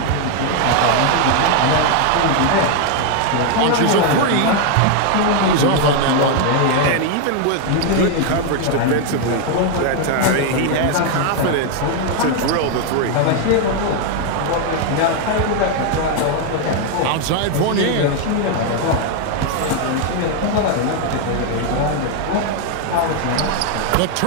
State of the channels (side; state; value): both; different; correlation 0.01